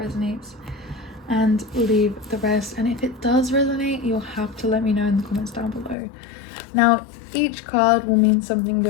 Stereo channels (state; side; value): drops out; right; at 6.0 s